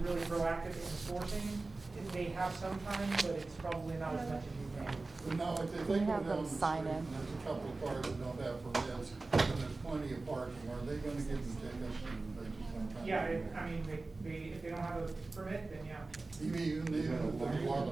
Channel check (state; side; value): quieter; left; 3.4 dB